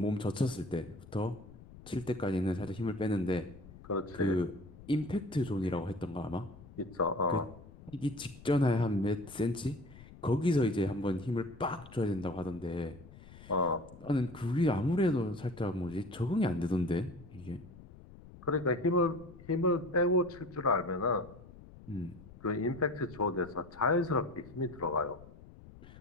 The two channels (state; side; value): noise; left; rumble, 19 dB below the sound